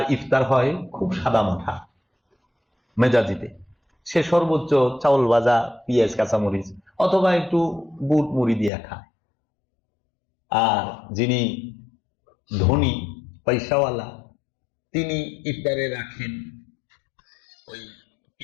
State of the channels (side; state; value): right; drops out; at 8.7 s